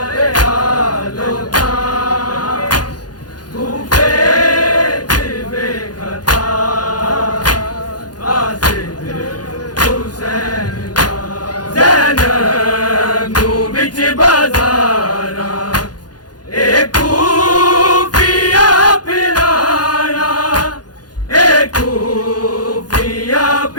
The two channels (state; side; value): late; right; 0.69 ms